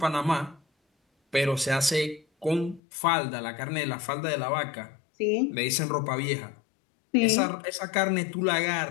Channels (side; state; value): right; drops out; at 2.8 s